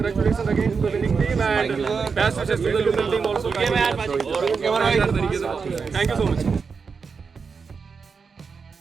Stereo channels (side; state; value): left; quieter; 5.4 dB